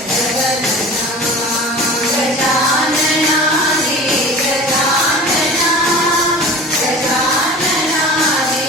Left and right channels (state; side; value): normal; both; correlation 0.38